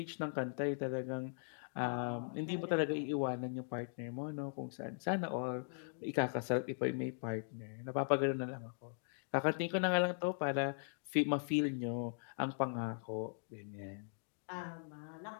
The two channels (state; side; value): silent; right; digital silence